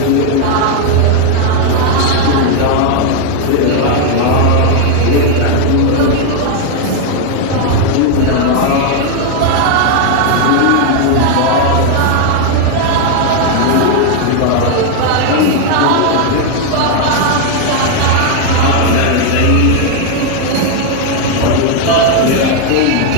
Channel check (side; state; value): both; different; correlation 0.01